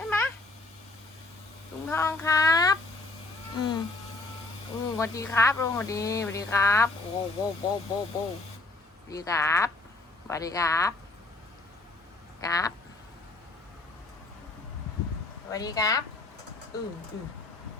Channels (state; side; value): quieter; right; 3.2 dB